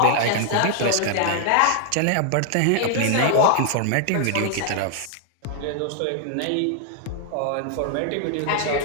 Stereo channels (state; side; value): different; both; correlation 0.00